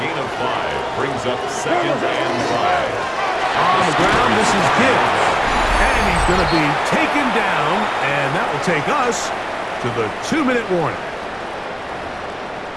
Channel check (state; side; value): identical; both; correlation 1.00